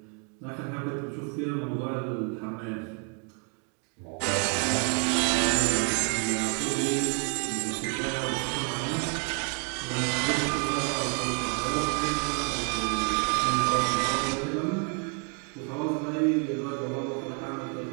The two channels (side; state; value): left; quieter; 37.9 dB